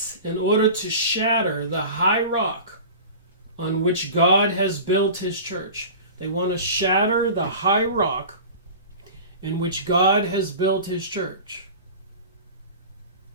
in order to shatter the high rock on which God has built his church, they want to shatter the high rock in which God has built his church.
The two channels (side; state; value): both; inverted; correlation -0.36